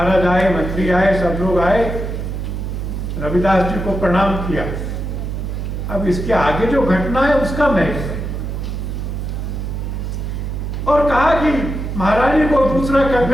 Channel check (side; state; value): right; noise; hum, 4 dB below the sound